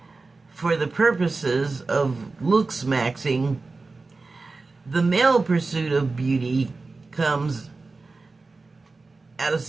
for the purposes of looks maxing, the male pursuit of beauty comes at a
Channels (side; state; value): left; quieter; 3.8 dB